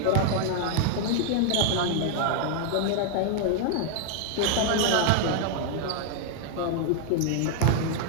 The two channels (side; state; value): both; different; correlation 0.00